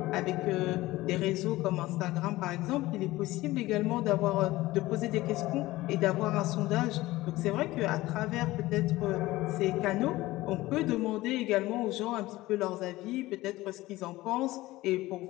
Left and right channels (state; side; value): quieter; right; 18.1 dB